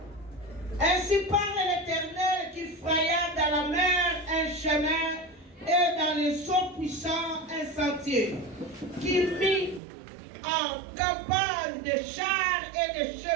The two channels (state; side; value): drops out; left; at 9.8 s